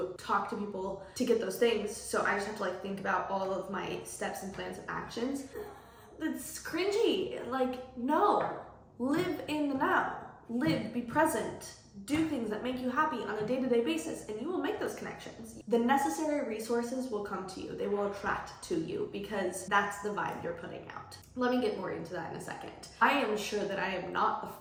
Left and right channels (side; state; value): both; identical; correlation 1.00